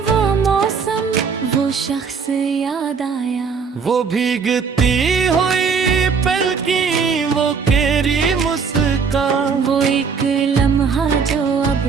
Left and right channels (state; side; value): quieter; left; 5.7 dB